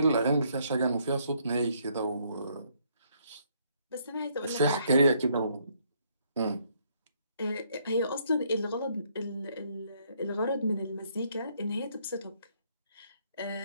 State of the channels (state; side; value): inverted; both; correlation -0.69